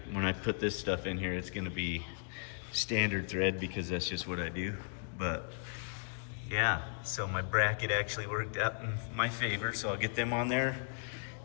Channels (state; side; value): silent; right; 54 dB below the other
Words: When I put this stuff in here, it's gonna be standard thread because that's just what I do. But yeah, so my bracket actually worked out in my favor. So I'll get them on there,